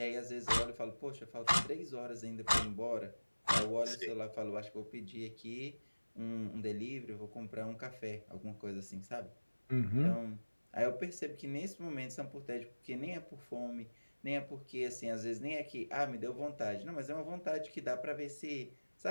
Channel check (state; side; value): inverted; both; correlation -1.00